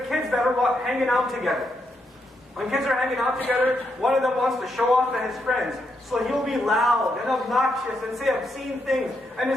kids that are hanging out together. When kids are hanging out together, one of them wants to show off to his friends. So he'll be loud and obnoxious and say obscene things. And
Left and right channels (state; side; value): normal; both; correlation 0.80